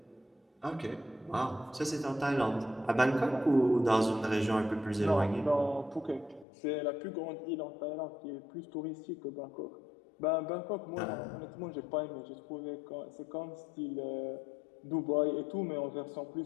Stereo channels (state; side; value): drops out; right; at 6.5 s